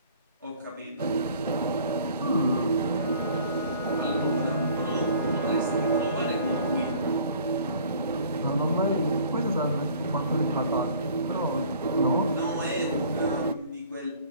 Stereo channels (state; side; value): inverted; both; correlation -0.51